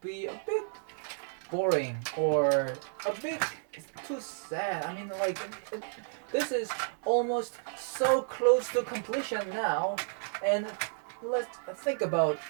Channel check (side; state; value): left; silent; 56 dB below the other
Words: be a bit boring or a bit too sad. I mean, like this is almost so close to completion now, and let's think about